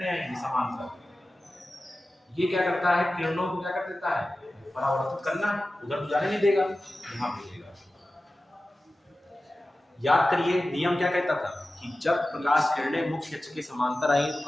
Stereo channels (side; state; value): both; normal; correlation 0.95